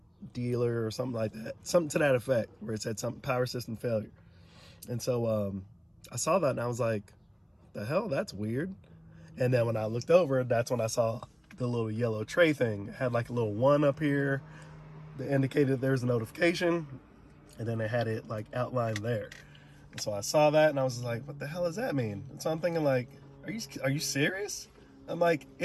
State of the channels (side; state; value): both; identical; correlation 1.00